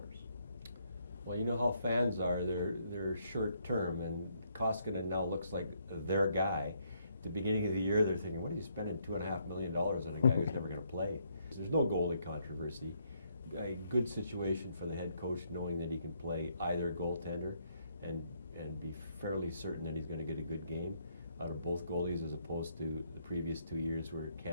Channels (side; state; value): both; inverted; correlation -0.72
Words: Well, you know how fans are. They're short term, and Koskinen now looks like their guy. At the beginning of the year, they're thinking, what are you spending $2.5 million on a guy who's never going to play? There's no goalie controversy. A good situation for the head coach, knowing that he can play either goaltender and be fairly certain that he's going to get a good game out of both goalies, as opposed to the previous 2 years where